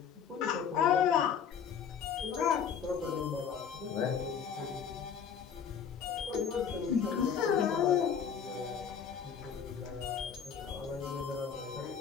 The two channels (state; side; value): quieter; right; 7.4 dB